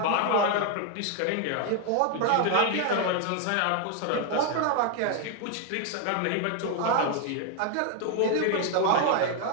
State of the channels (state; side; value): different; both; correlation 0.01